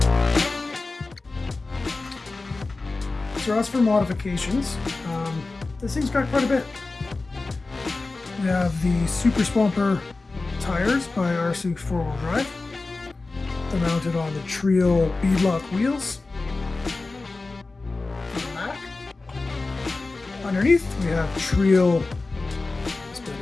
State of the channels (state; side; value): quieter; right; 3.5 dB